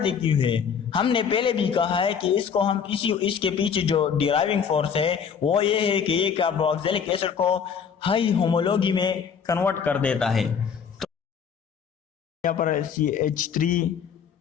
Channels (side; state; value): right; quieter; 7.0 dB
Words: क्यों है? हमने पहले भी कहा है कि इसको हम इसके पीछे जो डिराइविंग फोर्स है वो ये है कि ये कार्बोक्सिलिक एसिड को हाई होमोलॉजी में कन्वर्ट कर देता है। तो यहाँ पर CH3